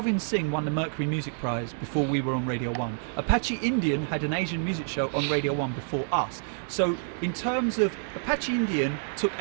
Singh won the Mercury Music Prize before we were on Radio 1. Apache Indian had an Asian music show on Radio 1 before us. So in terms of Apache Indian took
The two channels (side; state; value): left; silent; digital silence